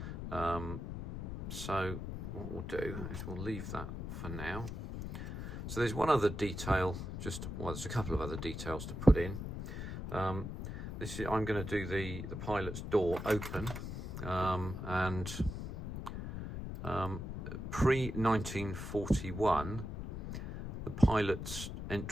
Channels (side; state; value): left; noise; rumble, 6 dB below the sound